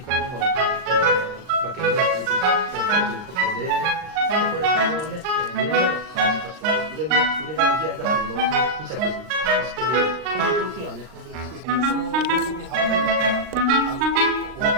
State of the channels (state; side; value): late; left; 39 ms